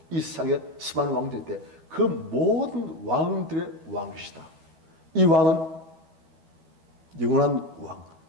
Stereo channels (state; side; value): late; left; 12 ms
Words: 이 세상에 수많은 왕들인데 그 모든 왕들의 왕이시다. 이 왕은 영원한 왕,